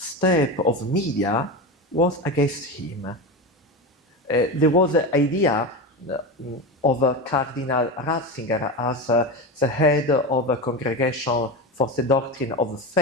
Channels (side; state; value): both; normal; correlation 0.22